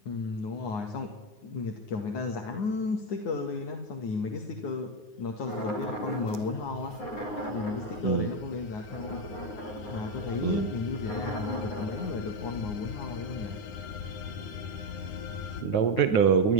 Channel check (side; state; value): right; late; 9.6 ms